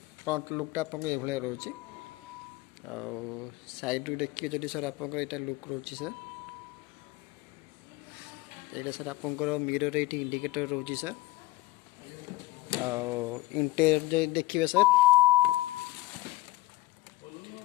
फ्रंट लुकटा आप रोचे साइड देखिए जब सर आपंकर यहाँ लुक रोची सर यहाँ सर आपंकर मिरर ये इंडिकेटर रोची सर इंटेरियर देखिए सर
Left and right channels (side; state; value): right; quieter; 18.1 dB